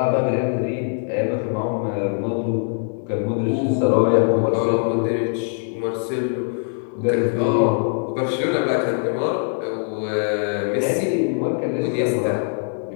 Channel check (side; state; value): right; silent; digital silence